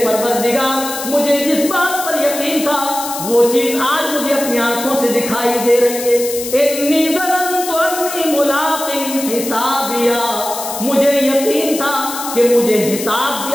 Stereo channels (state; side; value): noise; left; hiss, 8 dB below the sound